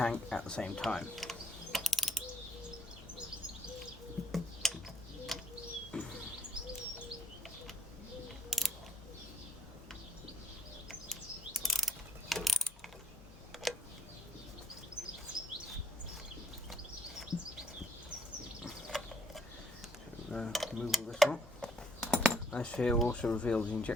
at the same time. Remove all this one. This here also reveals the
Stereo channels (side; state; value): both; normal; correlation 0.67